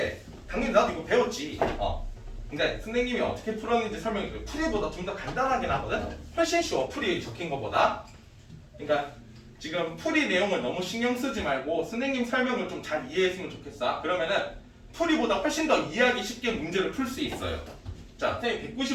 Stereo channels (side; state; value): both; identical; correlation 1.00